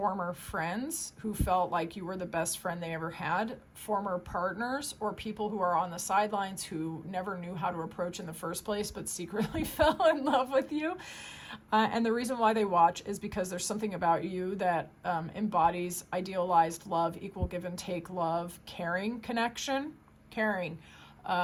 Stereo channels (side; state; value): both; identical; correlation 1.00